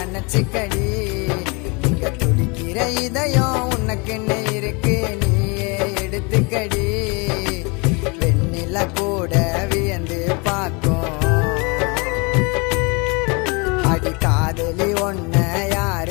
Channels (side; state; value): right; quieter; 29.9 dB